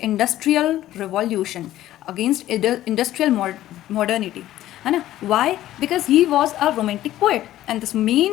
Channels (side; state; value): right; quieter; 13.9 dB